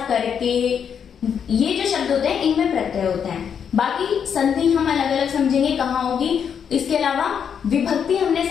करके, ये जो शब्द होते हैं इनमें प्रत्यय होते हैं। बाकी संधि हम अलग अलग समझेंगे कहाँ होगी। इसके अलावा विभक्ति हमने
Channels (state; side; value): quieter; right; 7.6 dB